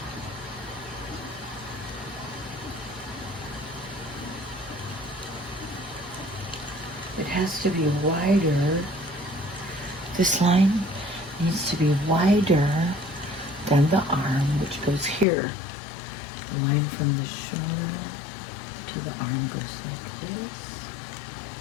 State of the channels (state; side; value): drops out; right; at 15.2 s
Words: It has to be wider. This line needs to be wider than the arm, which goes here. The line from the shoulder to the arm goes like this.